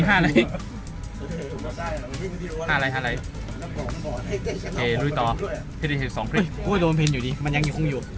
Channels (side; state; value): both; identical; correlation 1.00